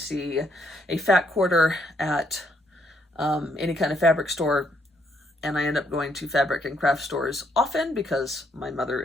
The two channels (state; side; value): normal; both; correlation 0.72